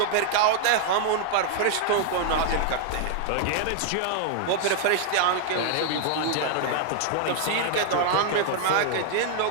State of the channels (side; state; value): both; different; correlation 0.00